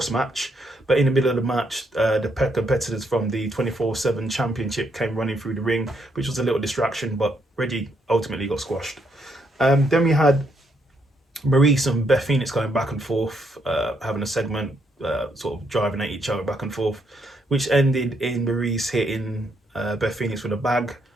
match. But in the middle of the match, the competitors from the 24/7 championship came running through the ring, which was a little distraction, but Reggie ultimately got squashed. Then we had Maurice and Beth Phoenix going back and forth, having a segment, sort of driving at each other back and forth. which ended in Maurice hitting Beth Phoenix with a bag,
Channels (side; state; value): both; normal; correlation 0.75